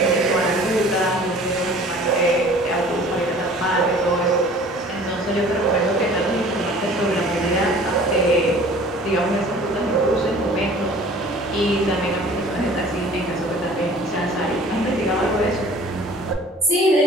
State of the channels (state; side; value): normal; both; correlation 0.48